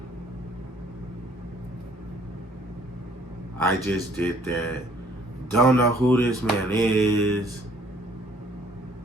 I just did that. Don't know who this man is.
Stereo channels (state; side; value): normal; both; correlation 0.60